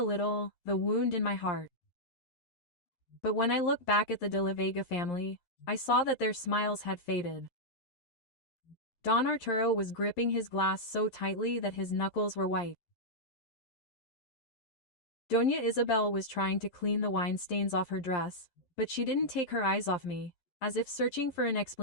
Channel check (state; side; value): late; right; 11 ms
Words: little, the wound in my heart. But when I looked back at the De la Vega family, I saw that their smiles had faded. Don Arturo was gripping his glass so tightly that his knuckles were white. Doña Isabel was trying to clean the wine stains off her dress, but she didn't take her eyes off me, as if searching for an